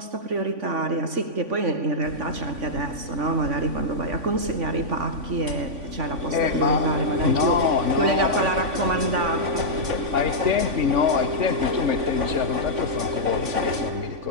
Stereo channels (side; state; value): left; late; 3.5 ms